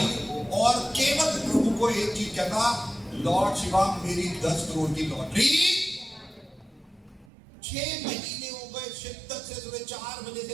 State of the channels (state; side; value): drops out; left; at 7.3 s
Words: और केवल प्रभु को एक चीज कहता, लॉर्ड शिवा मेरी 10 करोड़ की लॉटरी। 6 महीने हो गए शिद्दत से सुबह 4 बजे